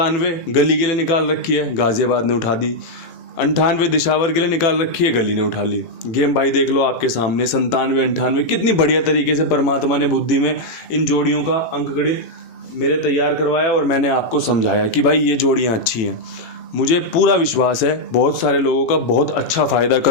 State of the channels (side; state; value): right; late; 18 ms